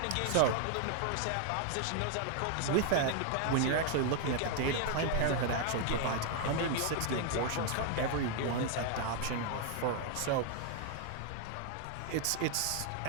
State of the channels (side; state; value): both; different; correlation 0.00